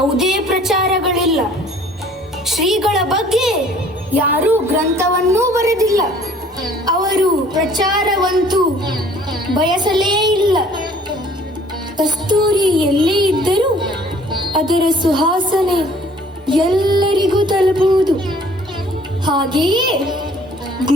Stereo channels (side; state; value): both; normal; correlation 0.54